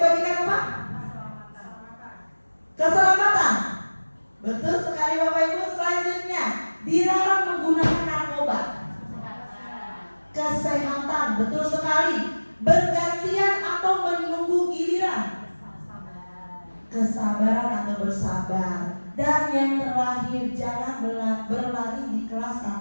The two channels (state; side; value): inverted; both; correlation -1.00